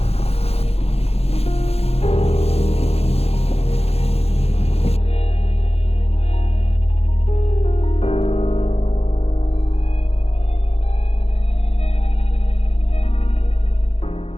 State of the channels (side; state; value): right; late; 0.29 ms